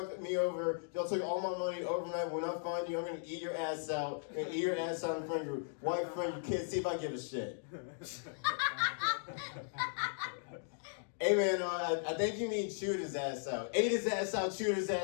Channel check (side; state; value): right; silent; digital silence